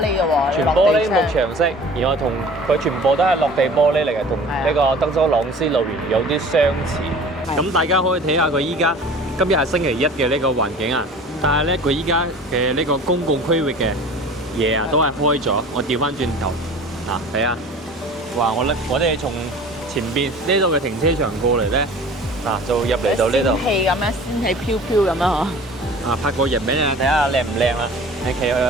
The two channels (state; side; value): normal; both; correlation 0.43